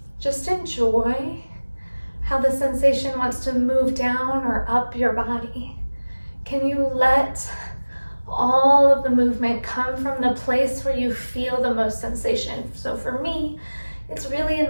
just enjoy how the sensation wants to move down or up your body. Can you let all of the movement come from the place where you feel the most sensation? So for me, it's really in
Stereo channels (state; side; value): inverted; both; correlation -1.00